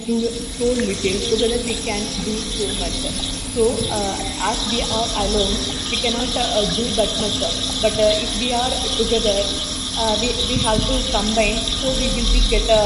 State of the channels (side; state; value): both; identical; correlation 1.00